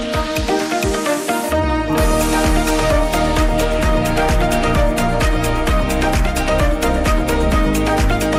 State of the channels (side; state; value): both; identical; correlation 1.00